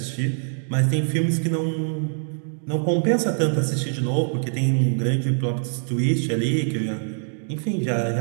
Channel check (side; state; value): left; silent; digital silence